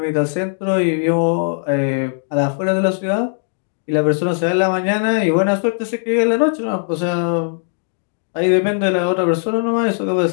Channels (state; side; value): silent; right; 67 dB below the other